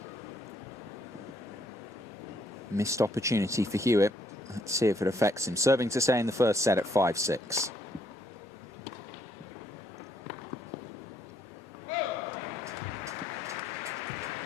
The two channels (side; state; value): both; normal; correlation 0.70